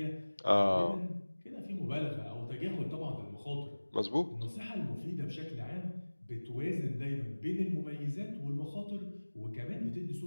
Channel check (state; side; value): inverted; both; correlation -1.00